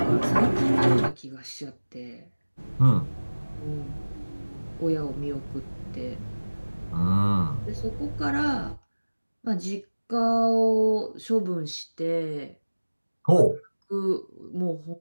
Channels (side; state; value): both; inverted; correlation -1.00